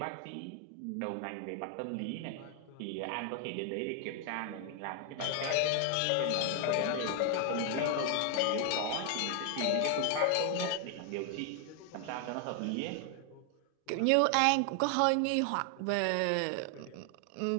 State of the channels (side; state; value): both; different; correlation 0.00